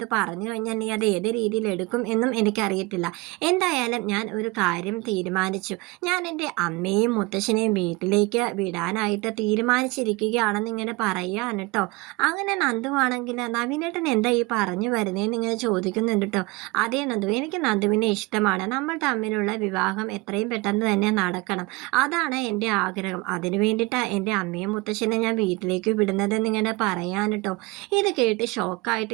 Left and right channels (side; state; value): left; quieter; 24.0 dB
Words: പറഞ്ഞു കഴിഞ്ഞാൽ നീ അത് ഏത് രീതിയിൽ എടുക്കും എന്നും എനിക്കറിയത്തില്ല. എന്തായാലും ഞാൻ ഒരു കാര്യം തീരുമാനിച്ചു. ഞാൻ എൻ്റെ അമ്മയും മുത്തശ്ശനെയും വീട്ടിലേക്ക് വിടാനായിട്ട് തീരുമാനിച്ചിരിക്കുകയാണെന്ന് ഇങ്ങനെ പറയുകയാണ് കേട്ടോ. അങ്ങനെ നന്ദു ആണെങ്കിൽ, നവീനേട്ടൻ എന്താ ഈ പറഞ്ഞു വരുന്നതെന്ന് ഇങ്ങനെ ചോദിക്കുന്നുണ്ട് കേട്ടോ. അതേ നന്ദു, എനിക്ക് നന്ദുവിനെ ഇഷ്ടമാണ്. നമ്മൾ തമ്മിലുള്ള വിവാഹം എത്രയും പെട്ടെന്ന് തന്നെ നടക്കണം. അതാണ് എൻ്റെ ആഗ്രഹം. അതിനു വേണ്ടിയിട്ടാണ് എൻ്റെ അമ്മയും മുത്തശ്ശനെ ഞാൻ വീട്ടിലേക്ക് വിടുന്നതെന്ന് ഇങ്ങനെ പറയാൻ കേട്ടോ. ഇത് കേട്ട് ഷോക്കായിട്ട്